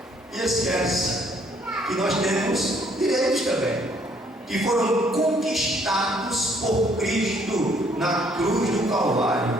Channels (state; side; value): normal; both; correlation 0.65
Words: e esquece que nós temos direitos também, que foram conquistados por Cristo na cruz do